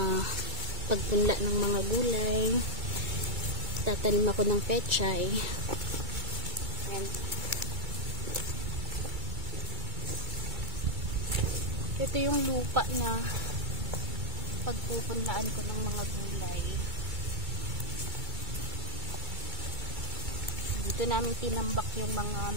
pagpunla ng mga gulay. Tatanim ako ng pechay. Ayan. Ito yung lupa na pagpupunlaan ko ng mga gulay. Dito namin tinambak yung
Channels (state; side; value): late; left; 2.3 ms